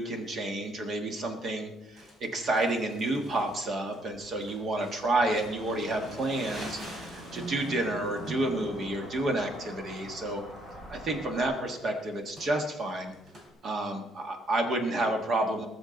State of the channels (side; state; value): both; normal; correlation 0.69